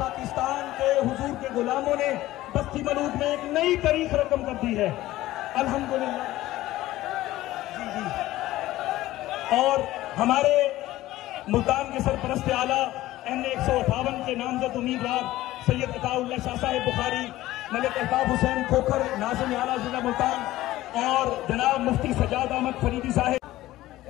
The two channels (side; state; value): right; quieter; 16.0 dB